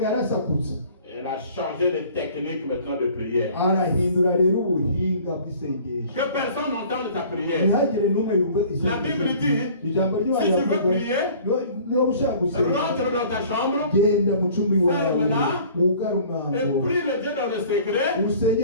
yarasakutse. Elle a changé de technique maintenant de prière. Arahindura rero ubuhinga bw'isengesho. Que personne n'entende ta prière. Ntihagire n'umwe yumva isengesho. La Bible dit, ijambo ry'Imana si tu veux rivuga, prier, niba ushaka gusenga rentre dans ta chambre genda mu cumbi wawe ferme-la, wugare et umwango prie le Dieu dans le secret.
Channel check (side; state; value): both; inverted; correlation -0.49